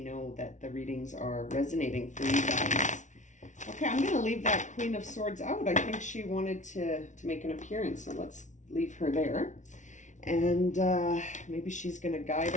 know that the readings are resonating for you guys. Okay, I'm going to leave that Queen of Swords out. I think she wanted to make an appearance, so let's leave her there. And maybe she's going to guide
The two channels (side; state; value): right; late; 0.36 ms